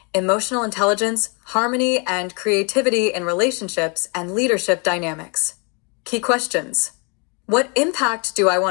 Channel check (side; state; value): right; quieter; 33.4 dB